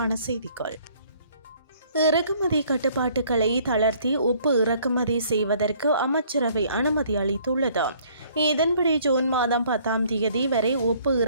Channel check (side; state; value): both; inverted; correlation -0.60